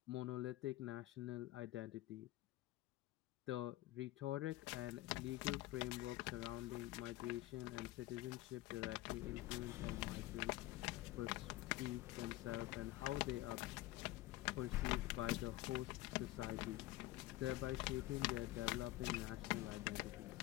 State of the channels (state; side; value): quieter; right; 17.0 dB